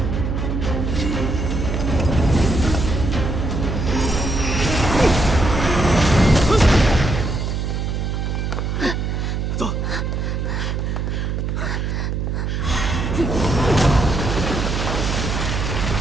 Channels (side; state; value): right; noise; hum, 2 dB below the sound